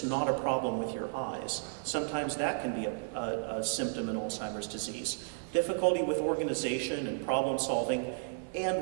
not a problem with your eyes. Sometimes that can be a symptom in Alzheimer's disease. Difficulty with organization and problem solving,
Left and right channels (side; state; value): left; silent; 56 dB below the other